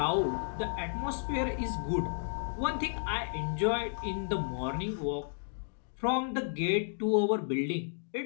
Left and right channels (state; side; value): silent; right; digital silence